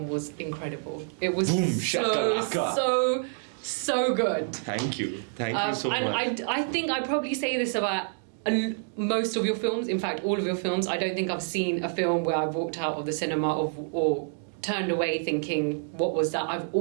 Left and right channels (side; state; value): left; silent; digital silence